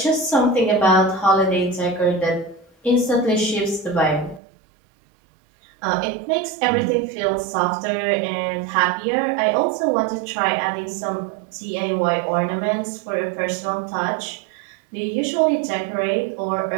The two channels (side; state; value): left; drops out; at 4.4 s